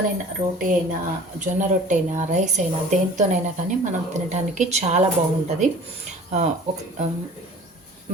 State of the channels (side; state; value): both; normal; correlation 0.45